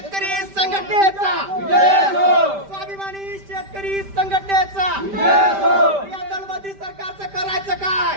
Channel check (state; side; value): late; left; 5.1 ms